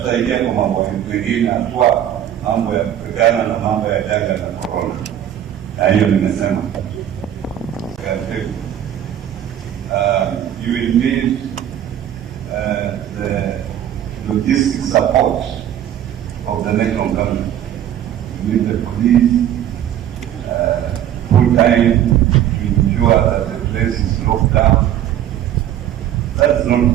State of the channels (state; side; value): quieter; left; 11.0 dB